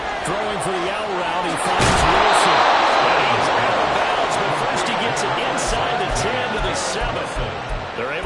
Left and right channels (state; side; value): identical; both; correlation 1.00